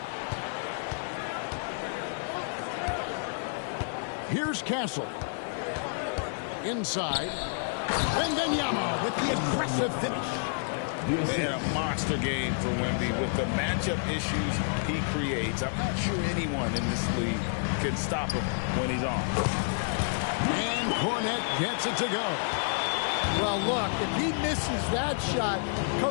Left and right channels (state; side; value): silent; right; 55 dB below the other